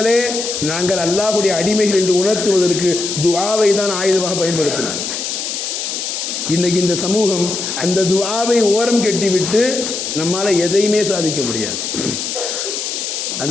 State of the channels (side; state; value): left; noise; hiss, 4 dB below the sound